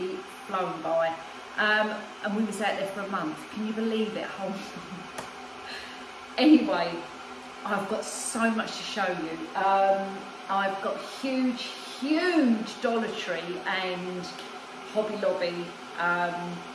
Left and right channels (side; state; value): both; identical; correlation 1.00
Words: flown by. And we was out there for a month. Can you believe it? Anyway, I've got so much to show you. I've got huge Dollar Tree and Hobby Lobby